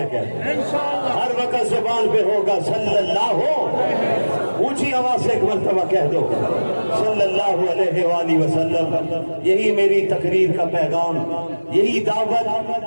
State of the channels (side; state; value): both; inverted; correlation -1.00